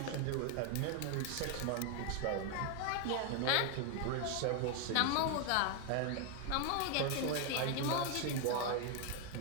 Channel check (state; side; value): different; both; correlation 0.01